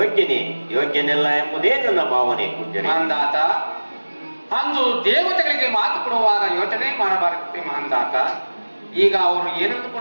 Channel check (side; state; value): both; inverted; correlation -1.00